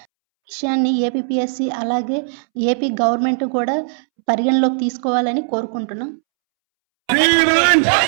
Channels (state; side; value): silent; left; 67 dB below the other